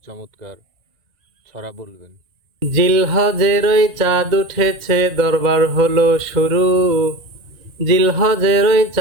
চমৎকার ছড়া বলবেন। জিলহজের ওই চাঁদ উঠেছে, দরবার হলো শুরু। জিলহজের ওই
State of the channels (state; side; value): late; left; 1.9 ms